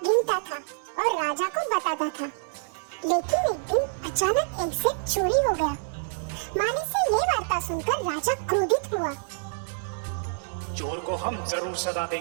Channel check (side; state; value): left; silent; digital silence